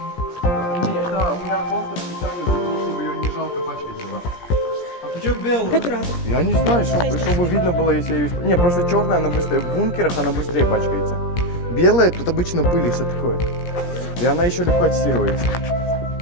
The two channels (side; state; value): right; late; 17 ms